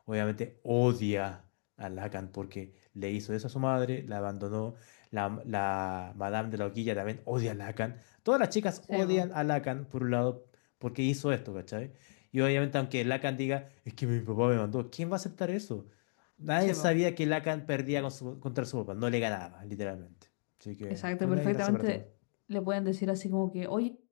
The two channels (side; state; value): right; silent; digital silence